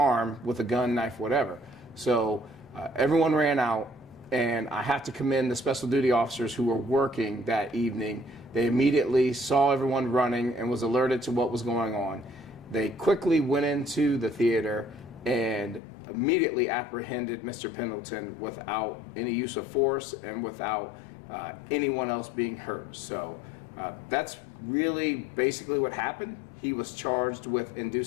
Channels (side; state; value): right; drops out; at 15.8 s